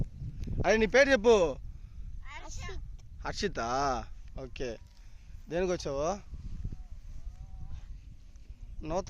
అదే నీ పేరు చెప్పు. హర్షిత. ఓకే, దేనికి వచ్చావు?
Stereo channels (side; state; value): both; identical; correlation 1.00